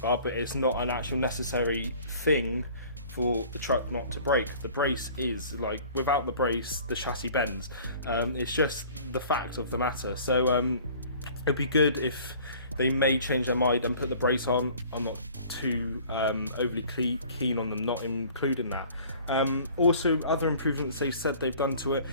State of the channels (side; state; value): both; inverted; correlation -0.49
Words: but it's not an actual necessary thing for the truck not to break. The brace is, like, without the brace, the chassis bends. It's just the fact of the matter. So it'd be good if they may change their mind and put the brace on. I'm not too overly keen on them not including that. Also, other improvements they said they've done to it,